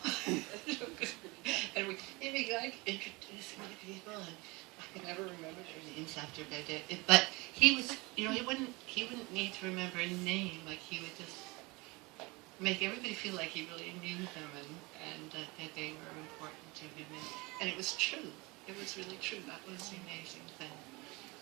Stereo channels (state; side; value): quieter; left; 24.9 dB